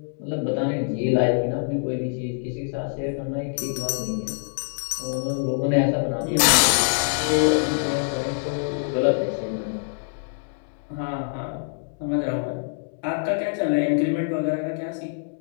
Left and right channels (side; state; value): right; silent; digital silence